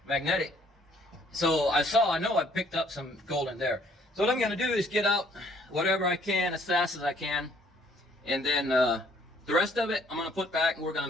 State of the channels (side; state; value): both; normal; correlation 0.62